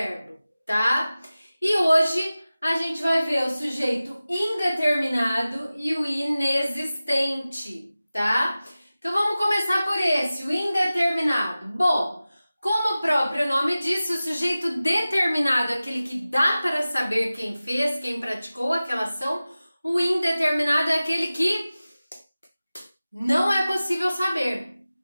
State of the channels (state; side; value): inverted; both; correlation -0.96